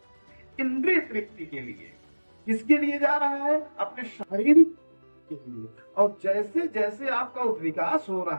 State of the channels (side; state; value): both; inverted; correlation -1.00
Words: इंद्रिय तृप्ति के लिए। किसके लिए जा रहा है? अपने शारीरिक के लिए। और जैसे जैसे आपका विकास हो